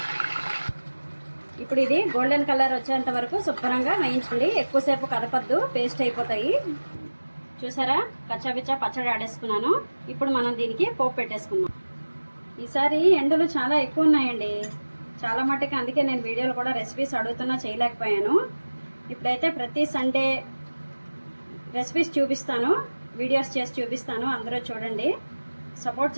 ఇప్పుడు ఇది గోల్డెన్ కలర్ వచ్చేంత వరకు శుభ్రంగా వేయించండి. ఎక్కువసేపు కదపద్దు, పేస్ట్ అయిపోతాయి. చూసారా, కచ్చాబిచ్చా పచ్చడి ఆడేసుకున్నాను. ఇప్పుడు మనం దీనికి పోపు పెట్టేసుకుందాం. ఈసారి ఎండలు చాలా ఎక్కువ ఉన్నాయండి, చాలా మట్టుకు. అందుకే నేను వీడియోలు కూడా రెసిపీస్ అడుగుతున్నా, చేయలేకపోయాను. ఇప్పుడైతే ప్రతి సండే రెసిపీస్ చూపిస్తాను, వీడియోస్ చేసి చూపిస్తాను. అందరూ చూడండి, సపోర్ట్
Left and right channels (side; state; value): both; inverted; correlation -1.00